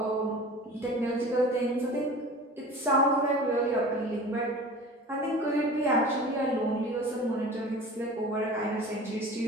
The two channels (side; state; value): both; normal; correlation 0.39